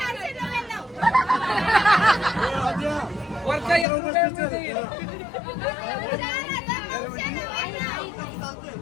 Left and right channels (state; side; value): drops out; right; at 3.9 s